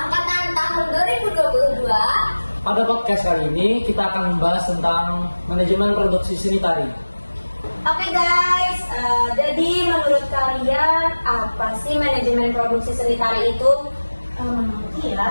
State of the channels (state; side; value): inverted; both; correlation -1.00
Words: tahun 2022. Pada podcast kali ini kita akan membahas tentang manajemen produksi sanitari. Oke guys, jadi menurut kalian apa sih manajemen produksi sanitari itu? Menurutku